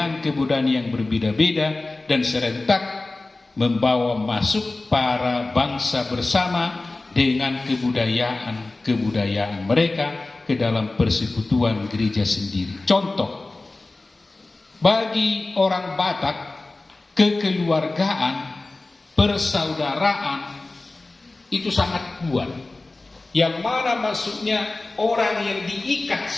yang berbeda-beda dan serentak membawa masuk para bangsa bersama dengan kebudayaan mereka ke dalam persekutuan gereja sendiri. Contoh, bagi orang Batak, kekeluargaan, persaudaraan itu sangat kuat. Yang mana maksudnya orang yang diikat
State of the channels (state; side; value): quieter; right; 3.1 dB